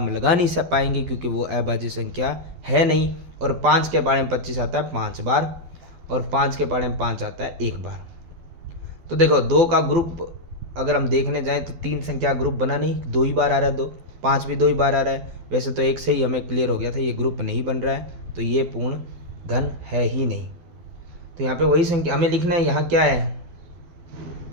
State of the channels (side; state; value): left; late; 12 ms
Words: लगा नहीं सब पाएंगे क्योंकि वो अभाज्य संख्या है नहीं। और 5 के पाड़े में 25 आता है 5 बार, और 5 के पाड़े में 5 आता है 1 बार। तो देखो 2 का ग्रुप अगर हम देखने जाएं तो 3 संख्या ग्रुप बना नहीं, 2 ही बार आ रहा है, 2 5 भी 2 ही बार आ रहा है। वैसे तो 1 से ही हमें क्लियर हो गया था ये ग्रुप नहीं बन रहा है, तो ये पूर्ण घन है ही नहीं। तो यहाँ पे वही संख्या हमें लिखना है। यहाँ क्या है,